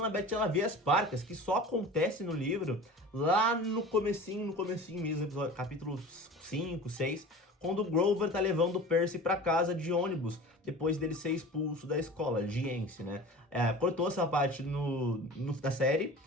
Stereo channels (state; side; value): normal; both; correlation 0.38